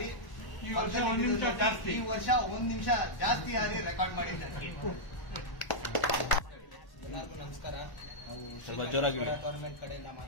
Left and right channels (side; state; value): right; late; 1.0 ms